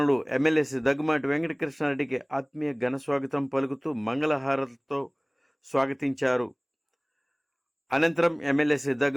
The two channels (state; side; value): identical; both; correlation 1.00